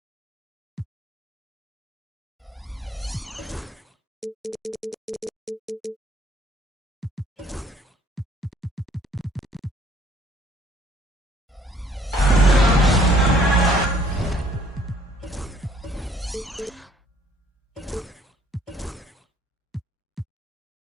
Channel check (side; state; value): both; normal; correlation 0.60